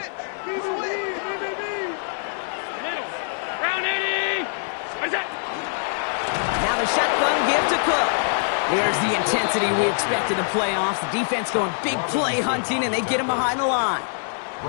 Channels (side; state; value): right; silent; digital silence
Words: Now the shotgun give to Cook. There's the intensity we expect in the playoffs. The defense going big play hunting, and they get him behind the line.